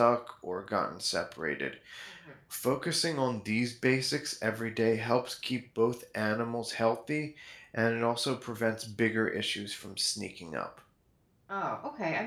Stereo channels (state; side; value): identical; both; correlation 1.00